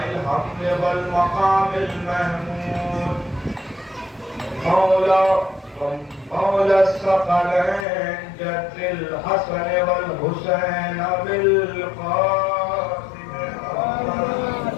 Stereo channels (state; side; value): drops out; right; at 7.9 s